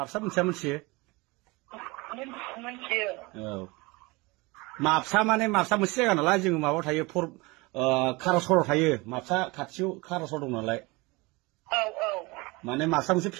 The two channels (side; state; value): left; quieter; 24.5 dB